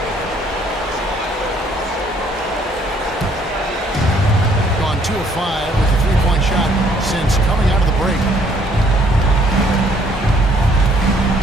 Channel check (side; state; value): both; normal; correlation 0.63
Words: Gone 2 of 5 with a 3-point shot since coming out of the break.